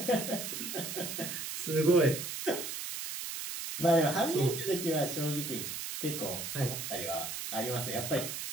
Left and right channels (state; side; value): noise; right; hiss, 5 dB below the sound